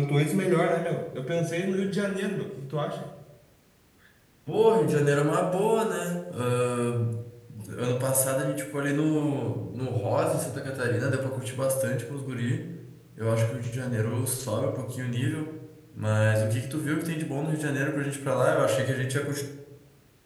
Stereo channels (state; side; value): identical; both; correlation 1.00